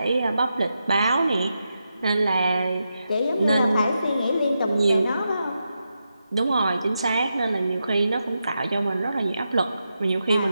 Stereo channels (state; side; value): inverted; both; correlation -0.87